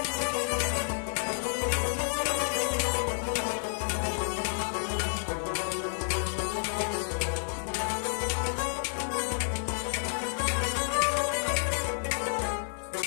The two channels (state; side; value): silent; right; 56 dB below the other